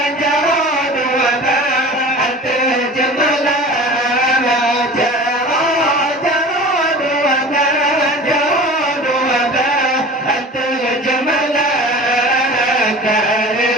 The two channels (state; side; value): normal; both; correlation 0.39